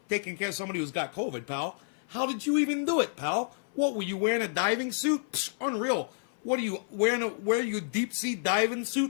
taking care of somebody who's got COVID, pal. How did you even do it, pal? What, were you wearing a diving suit? Psh, unreal. What are you wearing? A deep sea diving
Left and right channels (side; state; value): right; silent; 58 dB below the other